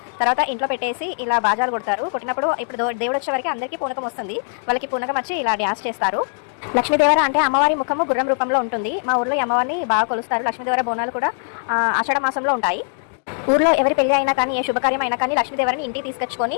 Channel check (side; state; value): right; silent; 65 dB below the other